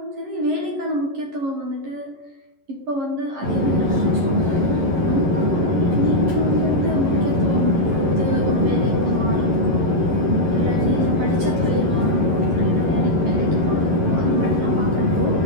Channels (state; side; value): late; left; 11 ms